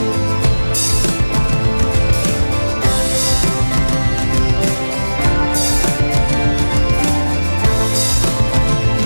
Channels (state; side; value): inverted; both; correlation -1.00